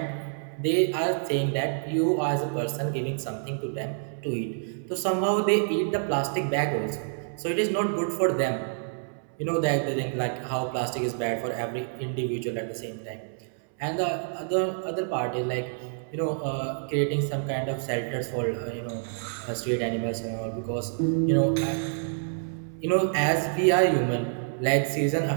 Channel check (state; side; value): silent; left; 60 dB below the other